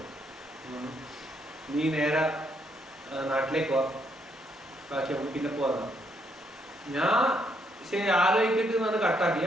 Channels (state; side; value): normal; both; correlation 0.74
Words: നീ നേരെ നാട്ടിലേക്ക് പോവാ, ബാക്കി നമുക്ക് പിന്നെ പോകാം. ഞാൻ ശരി ആലോചിച്ചിട്ട് എന്നാണ് കട്ടാക്കി.